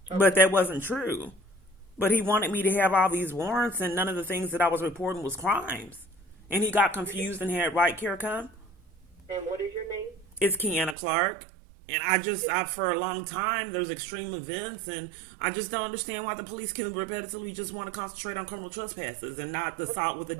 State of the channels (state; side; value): drops out; left; at 11.0 s